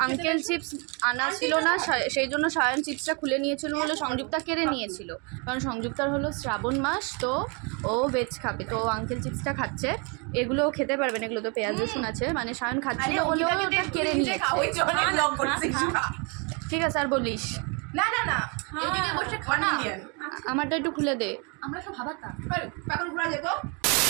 আঙ্কেল চিপস আনা ছিল না, সেই জন্য সায়ন চিপসটা খুলে নিয়েছিল বলে সংযুক্তা কেড়ে নিয়েছিল। কারণ সংযুক্তার হলো শ্রাবণ মাস, তো ও ভেজ খাবে, তো আঙ্কেল চিপসটা খাচ্ছে। এগুলো খেতে পারবে না, এগুলো তো পেঁয়াজ রসুন আছে, মানে সায়ন খাচ্ছিল বলে ওটা কেড়ে নিয়েছে। ঠিক আছে আর বলিস না না না, এদিকে বসে খানা। আমারটা একটু খুলে দে। আমরা সব ভাবাতা এখন ঘোরা যেত।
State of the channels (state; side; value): quieter; left; 33.3 dB